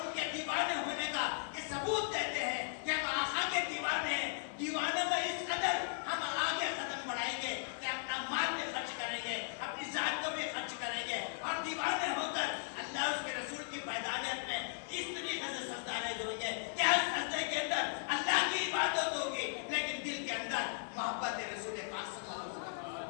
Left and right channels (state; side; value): silent; right; digital silence